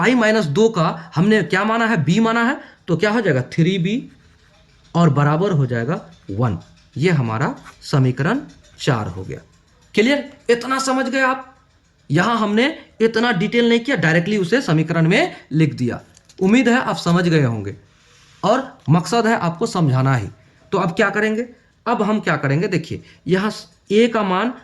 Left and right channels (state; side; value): identical; both; correlation 1.00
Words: का हमने क्या माना है, b माना है, तो क्या हो जाएगा, 3b और बराबर हो जाएगा 1। ये हमारा समीकरण 4 हो गया। क्लियर, इतना समझ गए आप। यहां हमने इतना डिटेल नहीं किया, डायरेक्टली उसे समीकरण में लिख दिया। उम्मीद है आप समझ गए होंगे और मकसद है आपको समझाना ही। तो अब क्या करेंगे, अब हम क्या करेंगे, देखिए यहाँ a का मान,